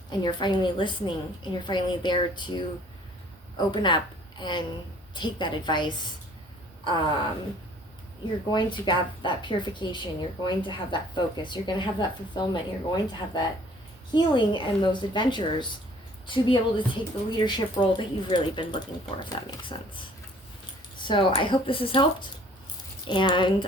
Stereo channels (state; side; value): normal; both; correlation 0.55